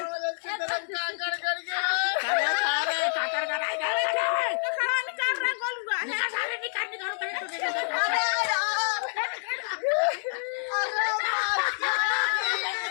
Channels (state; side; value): silent; right; digital silence